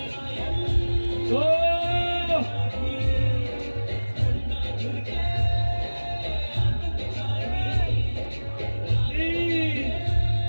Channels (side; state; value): both; inverted; correlation -1.00